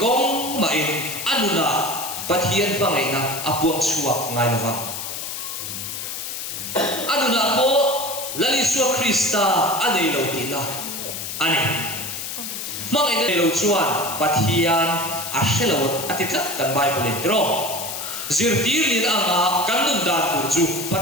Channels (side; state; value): left; noise; hiss, 6 dB below the sound